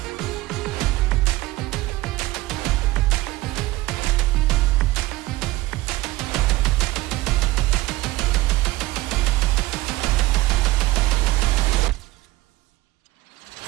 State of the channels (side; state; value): left; quieter; 18.1 dB